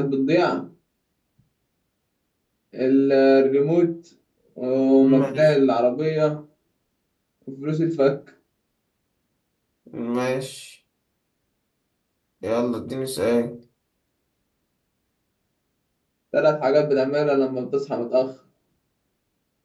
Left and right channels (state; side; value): identical; both; correlation 1.00